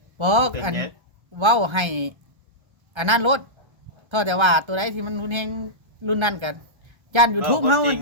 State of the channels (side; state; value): left; late; 1.3 ms